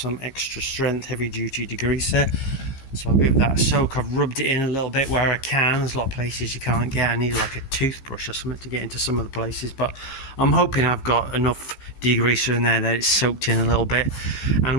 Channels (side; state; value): right; late; 15 ms